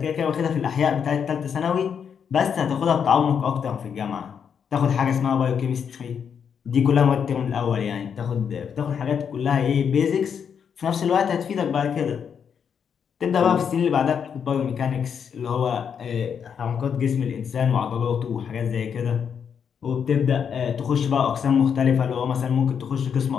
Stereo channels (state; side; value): quieter; right; 7.3 dB